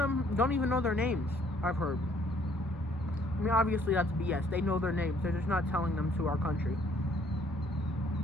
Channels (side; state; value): both; normal; correlation 0.62